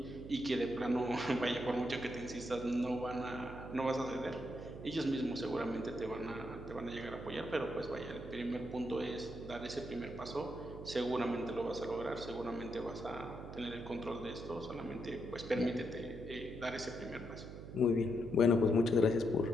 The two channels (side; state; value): right; noise; hum, 11 dB below the sound